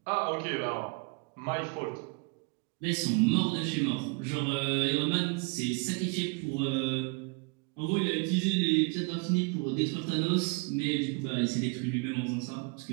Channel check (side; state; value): left; quieter; 32.3 dB